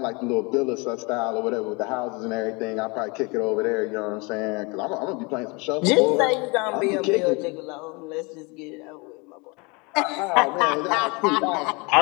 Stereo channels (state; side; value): quieter; right; 28.7 dB